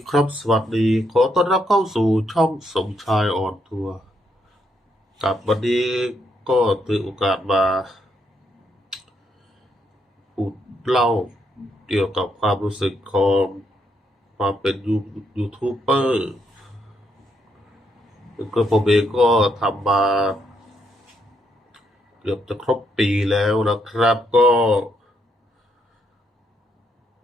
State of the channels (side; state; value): both; normal; correlation 0.76